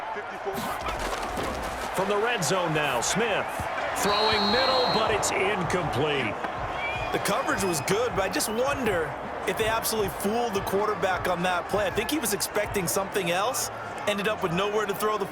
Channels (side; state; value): both; identical; correlation 1.00